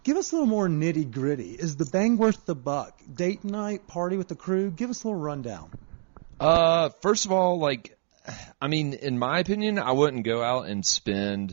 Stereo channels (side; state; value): left; silent; digital silence